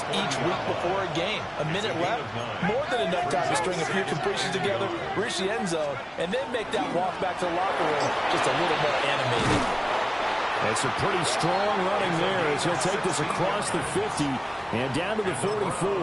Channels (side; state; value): both; identical; correlation 1.00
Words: each week before a game. A minute left, more than enough time to string a few completions together, reach the end zone, and then make that walk back to the locker room just a little more animated. It's a pretty strong running there as he'll take this across the 50 and down to the